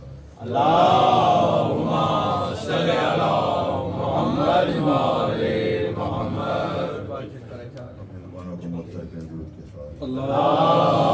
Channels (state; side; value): identical; both; correlation 1.00